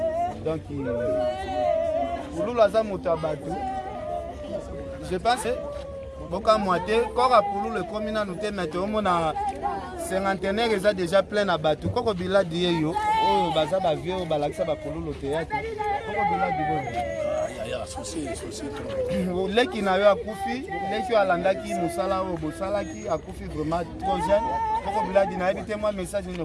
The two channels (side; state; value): both; identical; correlation 1.00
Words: Donc Pululu aza moto abatu. Je pense boka moité kora Pululu comme na nous te mettre au mona cinquantenaire eza déjà plein na batu. Koko bila dieyo oyo baza ba vieux balakisa ba Pululu théâtre. Leki na yo akufi, leki alandaki musala o bosalaki akufi vraiment trop jeune. Poko biladi na ebite moi message ni